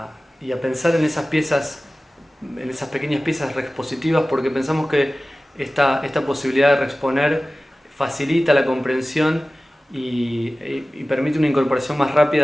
pensar en esas piezas, en esas pequeñas piezas reexpositivas, porque pensamos que esta posibilidad de reexponer facilita la comprensión y permite una incorporación más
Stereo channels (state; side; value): normal; both; correlation 0.97